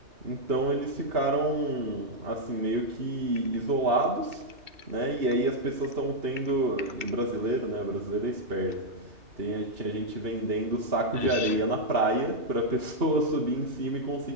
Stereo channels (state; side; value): late; left; 2.3 ms